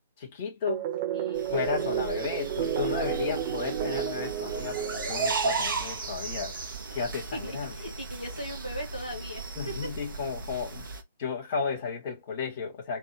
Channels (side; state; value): both; inverted; correlation -0.40